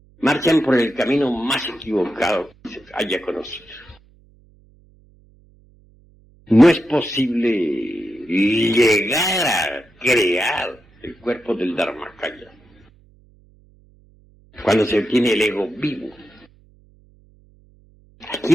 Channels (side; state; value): right; noise; hum, 30 dB below the sound